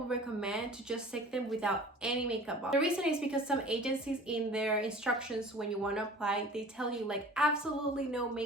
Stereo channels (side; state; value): both; normal; correlation 0.44